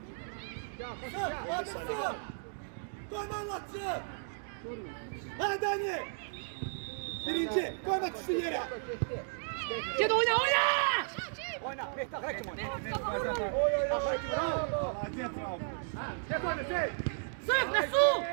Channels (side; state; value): left; silent; digital silence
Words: Sığ. Koyma anlatsın. Ha Dani. Birinci, koyma tutsun yere. Cedi oyna. Oyna, Mehtap Hakim oyna. Bravo. Sırf Resul.